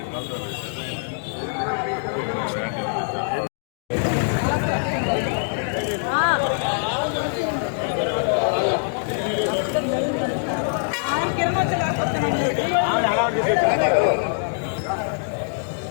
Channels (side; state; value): right; silent; digital silence